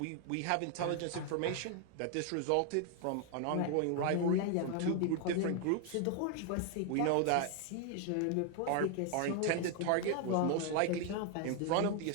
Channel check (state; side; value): different; both; correlation 0.00